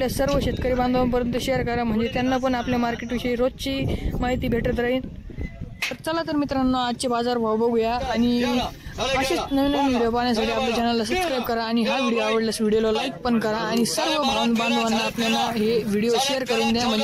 सर्व शेतकरी बांधवांपर्यंत शेअर करा म्हणजे त्यांना पण आपल्या मार्केटविषयी रोजची माहिती भेटत राहील। चला तर मित्रांनो आजचे बाजार भाव बघूया आणि असेच नवीन व्हिडिओ पाहण्यासाठी आपल्या चॅनलला सबस्क्राइब करा आणि हा व्हिडिओ आवडल्यास व्हिडिओला लाईक पण करा आणि सर्व बांधवांना आपल्याला हे व्हिडिओ शेअर करून द्या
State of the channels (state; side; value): identical; both; correlation 1.00